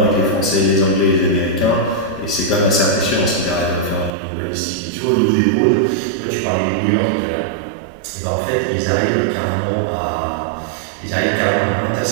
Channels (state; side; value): drops out; left; at 4.1 s